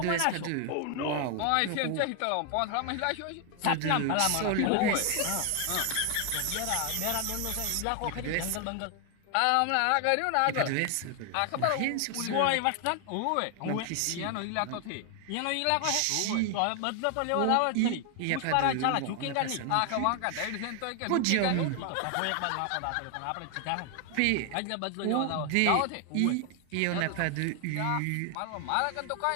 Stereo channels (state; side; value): different; both; correlation 0.00